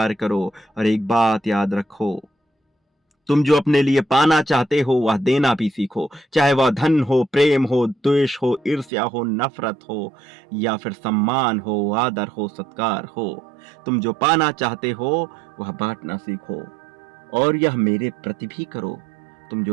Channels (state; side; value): drops out; left; at 8.9 s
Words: करो। और एक बात याद रखो, तुम जो अपने लिए पाना चाहते हो वह देना भी सीखो। चाहे वह धन हो, प्रेम हो, द्वेष हो, ईर्ष्या हो, नफरत हो, या फिर सम्मान हो, आदर हो, सत्कार हो। तुम जो पाना चाहते हो वह बांटना सीखो, और यह मेरे प्रति भी करो। तुम